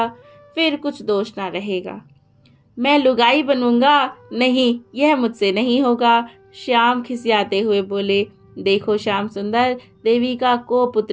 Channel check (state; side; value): identical; both; correlation 1.00